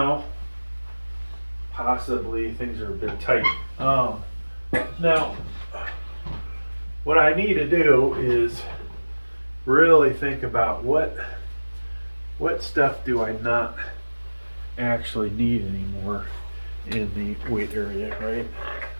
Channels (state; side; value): inverted; both; correlation -1.00